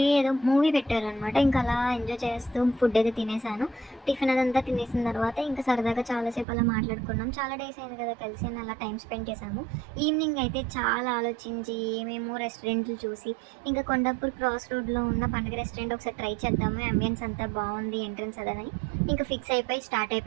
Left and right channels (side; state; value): left; drops out; at 6.5 s